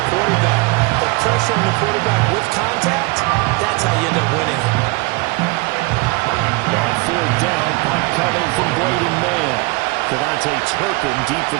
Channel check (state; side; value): quieter; left; 25.6 dB